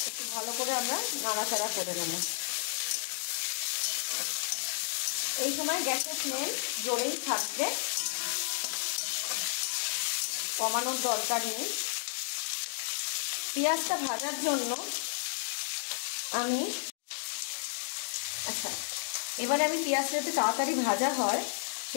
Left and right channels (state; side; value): silent; right; digital silence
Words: একটু ভালো করে আমরা নাড়াচাড়া করে নেব। এই সময় গ্যাসের ফ্লেম জোরেই থাকবে, কমানোর দরকার নেই। পেঁয়াজটা ভাজার জন্য আমি এবারে আমি পেঁয়াজটা যাতে তাড়াতাড়ি ভাজা হয়